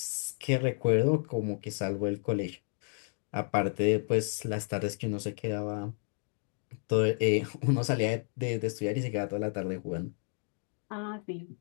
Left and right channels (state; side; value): silent; right; 57 dB below the other